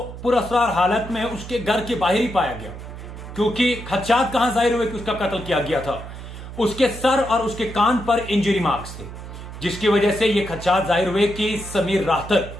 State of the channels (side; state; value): right; noise; hum, 12 dB below the sound